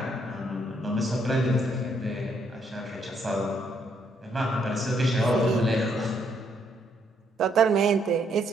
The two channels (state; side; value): normal; both; correlation 0.72